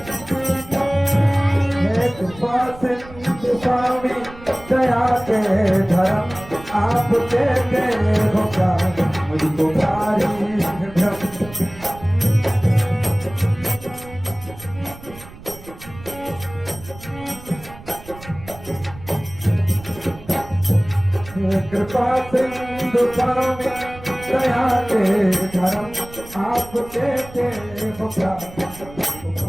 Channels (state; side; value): noise; right; rumble, 18 dB below the sound